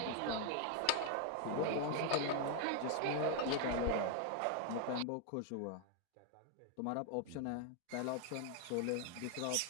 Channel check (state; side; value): different; both; correlation 0.00